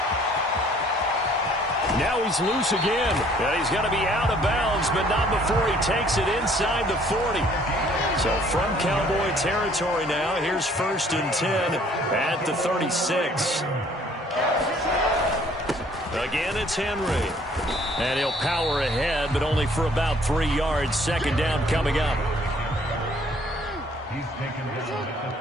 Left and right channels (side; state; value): both; normal; correlation 0.59